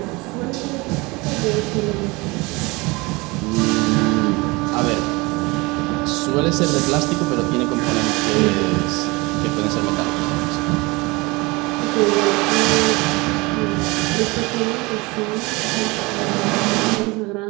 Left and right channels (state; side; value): quieter; left; 24.6 dB